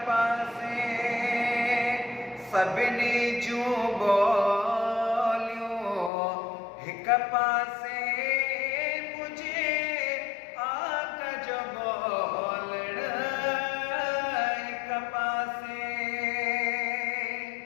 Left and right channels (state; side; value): drops out; right; at 6.1 s